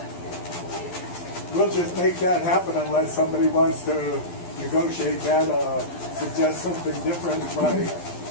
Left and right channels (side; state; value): right; late; 12 ms